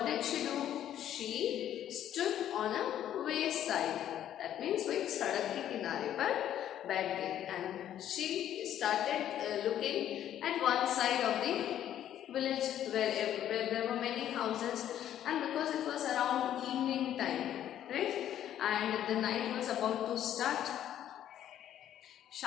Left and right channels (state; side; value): quieter; right; 11.1 dB